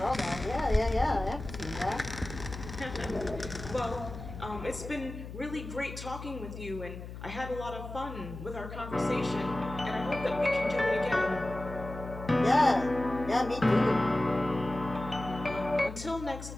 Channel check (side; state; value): left; noise; hum, 11 dB below the sound